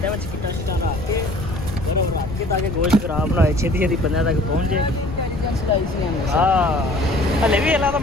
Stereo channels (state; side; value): noise; left; rumble, 9 dB below the sound